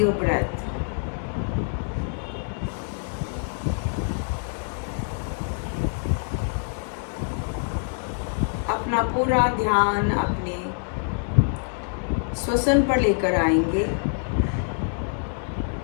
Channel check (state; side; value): silent; right; 61 dB below the other